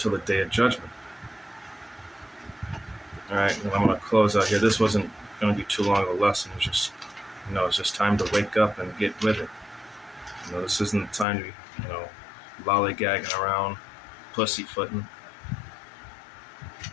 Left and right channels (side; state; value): right; drops out; at 11.2 s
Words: the day of judgment. All right, well, I'm going to close out here. This wasn't going to be too long of a lesson. It was just, it's just time to wake up and get with it. This isn't the time to be, lollygagging around, pussyfooting.